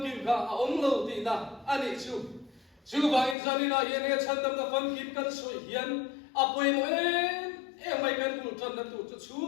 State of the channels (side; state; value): right; drops out; at 3.4 s